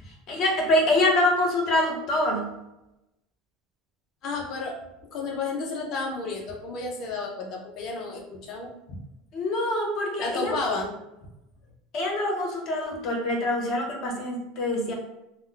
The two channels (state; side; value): normal; both; correlation 0.37